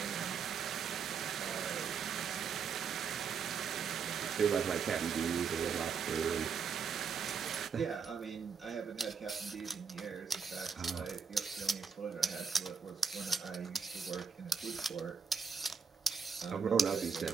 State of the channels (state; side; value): quieter; left; 6.0 dB